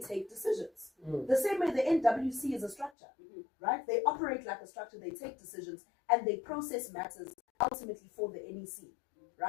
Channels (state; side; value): drops out; right; at 2.9 s